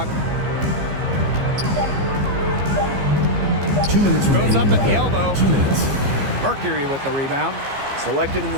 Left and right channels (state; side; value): late; left; 15 ms